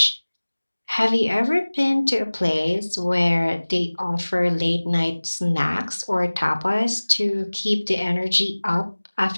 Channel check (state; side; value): inverted; both; correlation -1.00